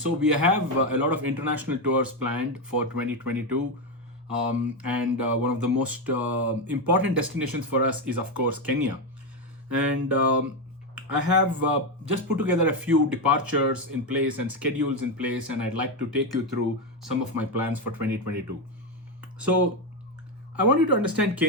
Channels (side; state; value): both; normal; correlation 0.09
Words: we have a lot of international tours planned for 2022. And one of the most important destinations for us is, of course, Kenya. And I have just put together a few departures in place and schedules in place, and I'd like to take you through some of my plans for 2022. So, I want you to understand